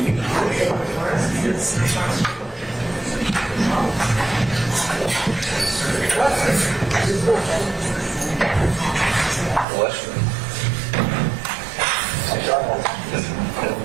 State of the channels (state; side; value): drops out; left; at 9.7 s